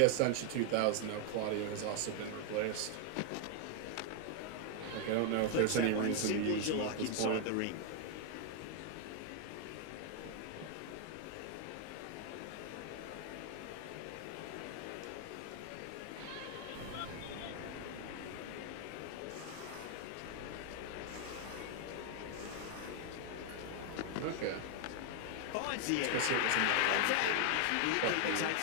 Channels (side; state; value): both; different; correlation 0.00